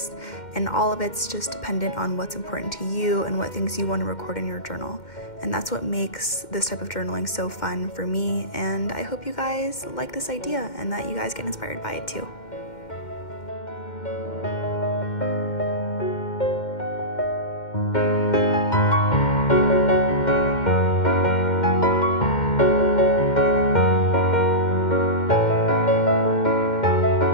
and all of it's just dependent on what's important to you and what things you want to record in your journal. And that's what makes this type of journaling so fun for me, and I hope you guys like this idea and that you guys get inspired by it too.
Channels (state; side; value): late; right; 2.1 ms